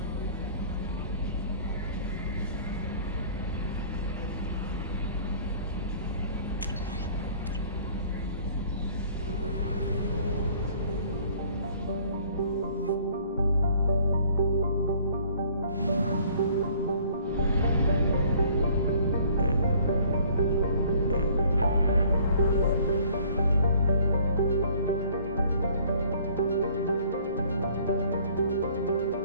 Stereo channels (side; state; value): both; inverted; correlation -0.55